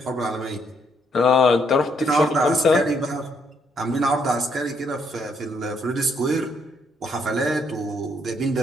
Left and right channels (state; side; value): normal; both; correlation 0.71